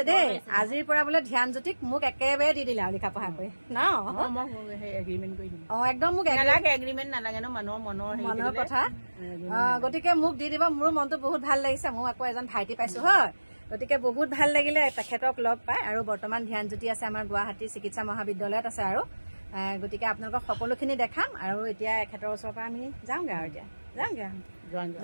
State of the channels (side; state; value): both; inverted; correlation -1.00